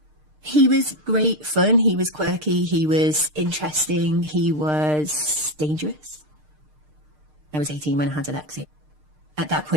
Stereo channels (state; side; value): late; left; 6.6 ms